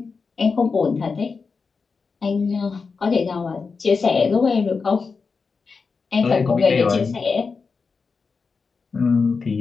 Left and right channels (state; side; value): quieter; right; 4.9 dB